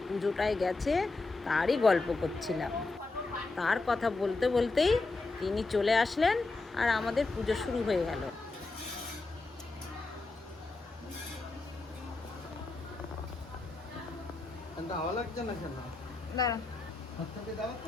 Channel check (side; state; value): right; quieter; 3.5 dB